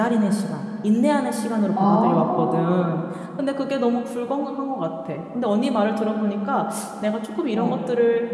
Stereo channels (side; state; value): both; identical; correlation 1.00